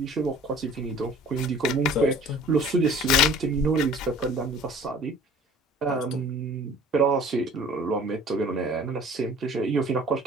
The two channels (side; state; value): both; normal; correlation 0.48